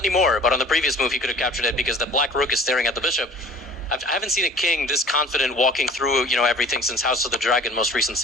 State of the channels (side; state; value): both; normal; correlation 0.46